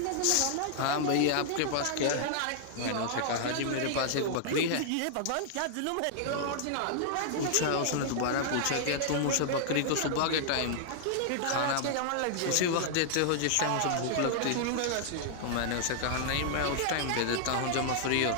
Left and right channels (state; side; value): different; both; correlation -0.01